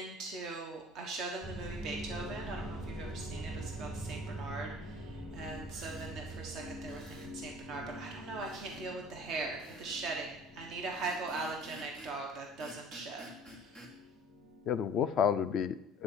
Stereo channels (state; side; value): normal; both; correlation 0.48